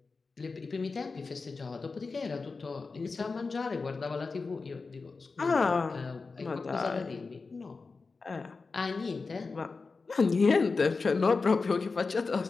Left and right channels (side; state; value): right; quieter; 4.2 dB